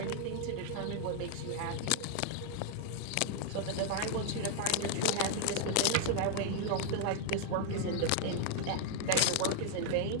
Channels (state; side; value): different; both; correlation 0.00